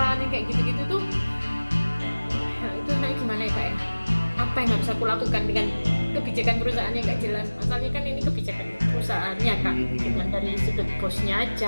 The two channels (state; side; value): inverted; both; correlation -1.00